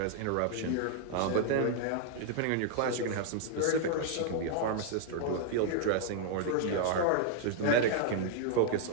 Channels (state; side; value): different; both; correlation 0.00